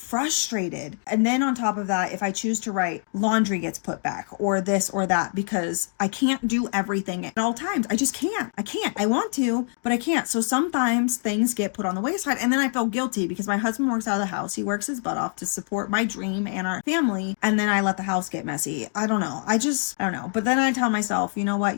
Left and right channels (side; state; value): right; silent; 57 dB below the other